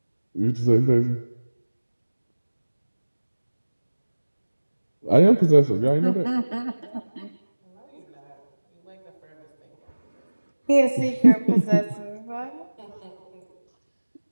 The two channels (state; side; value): inverted; both; correlation -1.00